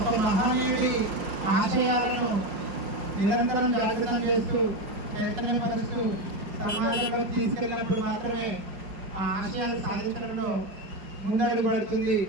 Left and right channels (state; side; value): late; left; 5.5 ms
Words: ఒక మహానీయుడి ఆశయాలను నిరంతరం జాగృతం చేస్తూ చైతన్యపరుస్తూ సమాజంలోకి తీసుకెళ్ళినప్పుడు మాత్రమే ఆ ఆశయాలు సాధించడంలో ముందడుగు పడుతుంది.